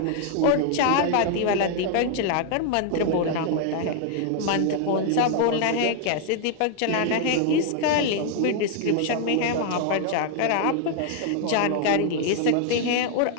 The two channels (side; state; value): both; different; correlation 0.00